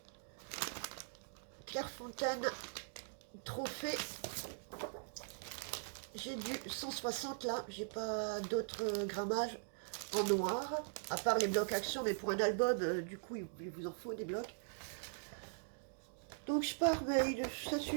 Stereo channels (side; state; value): left; silent; digital silence